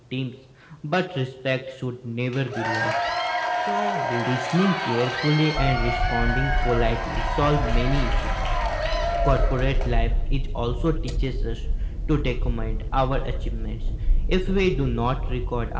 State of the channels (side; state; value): both; identical; correlation 1.00